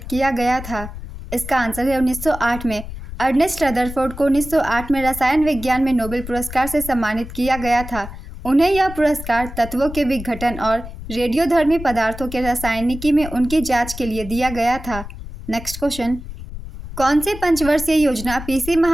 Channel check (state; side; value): noise; left; rumble, 11 dB below the sound